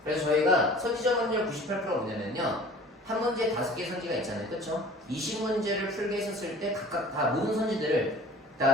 그래서 저희가 선지적 확률 98%가 뭐냐면요. 한 문제에 5개의 선지가 있잖아요. 그쵸? 20문제를 풀게 했었을 때 각각 다 모든 선지들을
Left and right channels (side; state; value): both; normal; correlation 0.46